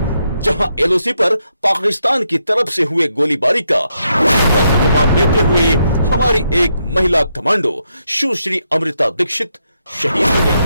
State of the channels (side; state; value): both; inverted; correlation -0.80